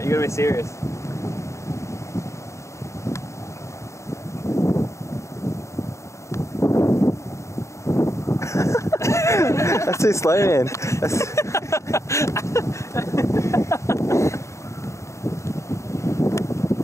you gotta be serious. That's too slow, man.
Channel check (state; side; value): late; right; 0.14 ms